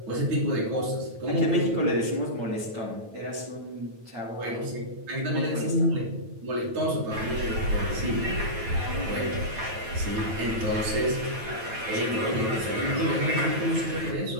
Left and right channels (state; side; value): late; left; 9.0 ms